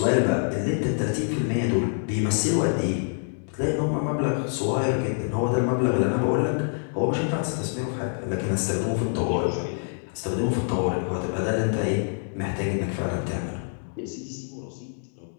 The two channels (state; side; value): silent; right; 61 dB below the other